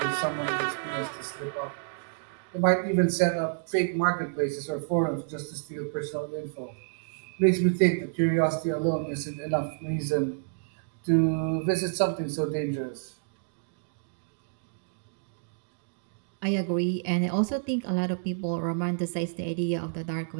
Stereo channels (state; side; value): silent; left; digital silence